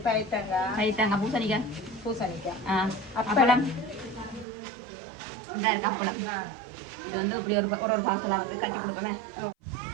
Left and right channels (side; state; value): left; drops out; at 4.5 s